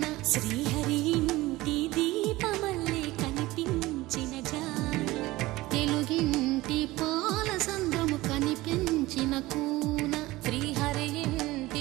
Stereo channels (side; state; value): left; quieter; 19.0 dB